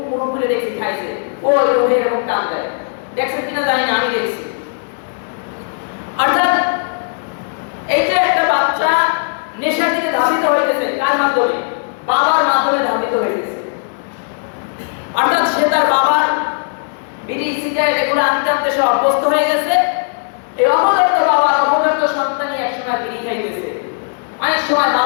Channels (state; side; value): silent; right; digital silence